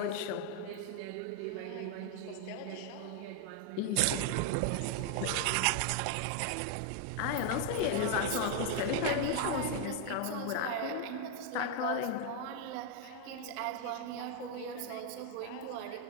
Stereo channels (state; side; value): different; both; correlation 0.00